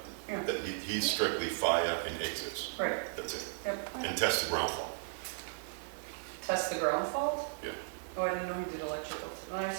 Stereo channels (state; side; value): silent; left; digital silence